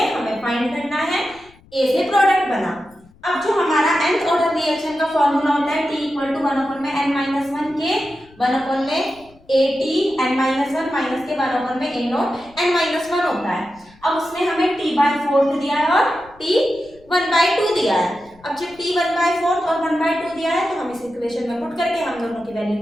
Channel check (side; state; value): left; noise; rumble, 27 dB below the sound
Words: हमें फाइंड करना है, ए से प्रोडक्ट बना। अब जो हमारा nth ऑर्डर रिएक्शन का फॉर्मूला होता है t इक्वल टू 1 अपॉन में n माइनस वन के 1 अपॉन में A T n minus one minus के 1 अपॉन में A not n minus one होता है। अब उसने हमें t/4 दिया है और t 1/2 दिया है। अब जब t 1/4 और 1/2 दिया है तो हम इस इक्वेशन में पुट करके हम दोनों की वैल्यू